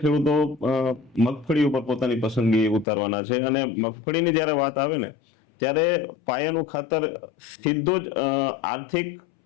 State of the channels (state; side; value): drops out; right; at 2.9 s